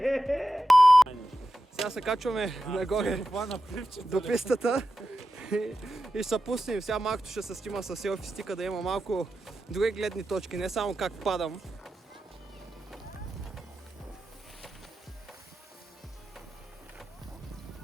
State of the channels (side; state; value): both; normal; correlation 0.91